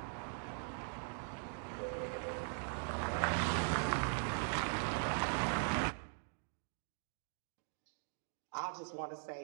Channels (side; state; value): left; silent; 50 dB below the other